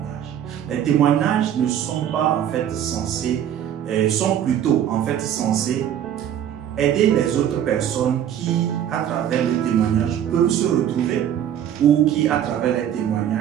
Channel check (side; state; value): left; quieter; 10.1 dB